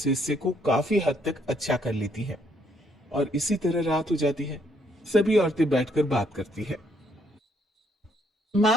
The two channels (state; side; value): normal; both; correlation 0.70